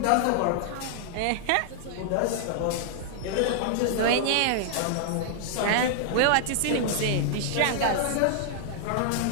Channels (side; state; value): both; different; correlation -0.01